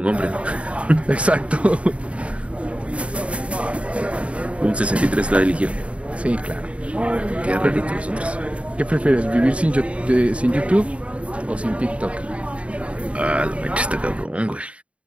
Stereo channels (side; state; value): left; late; 0.063 ms